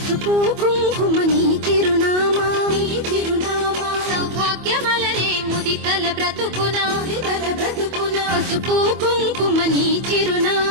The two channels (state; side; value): late; left; 25 ms